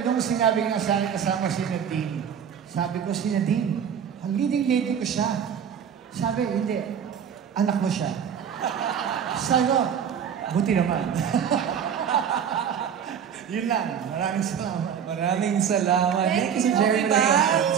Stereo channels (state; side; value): quieter; left; 8.0 dB